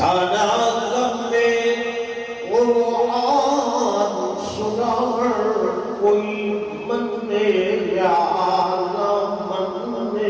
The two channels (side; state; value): both; identical; correlation 1.00